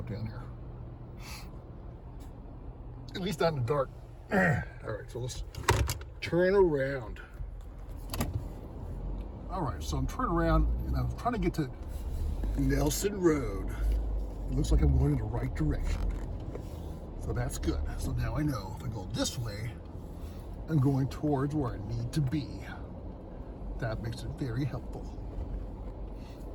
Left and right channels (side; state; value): both; identical; correlation 1.00